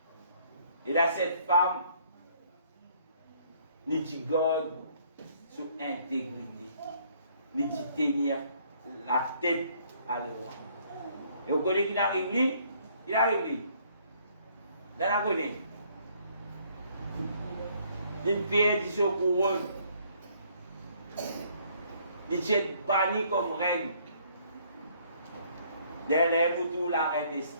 Et là, cette femme, nous garde sur intégrité. Nous tenir la tête à l'eau. Et vous connaissez qu'il arrive lui? Il arrive lui. Vous la connaissez? Il perd du son couronne. Il est banni comme reine. Derrière vous, la reine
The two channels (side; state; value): both; inverted; correlation -0.63